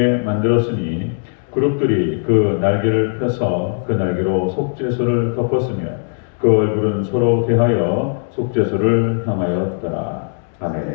만들었으니 그룹들이 그 날개를 펴서 그 날개로 속죄소를 덮었으며 그 얼굴은 서로 대하여 속죄소를 향하였더라.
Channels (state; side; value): silent; right; 67 dB below the other